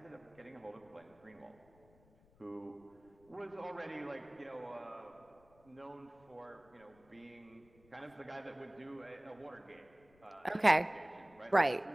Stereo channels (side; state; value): left; noise; rumble, 29 dB below the sound